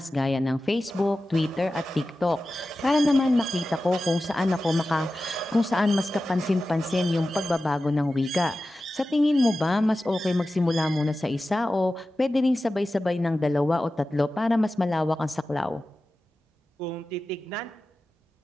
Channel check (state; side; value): normal; both; correlation 0.94